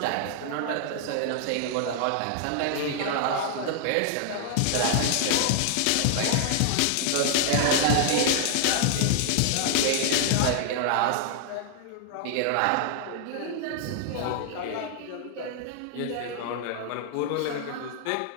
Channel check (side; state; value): both; different; correlation 0.00